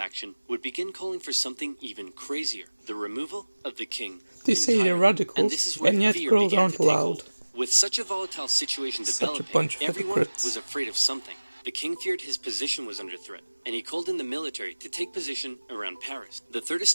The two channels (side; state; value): both; inverted; correlation -1.00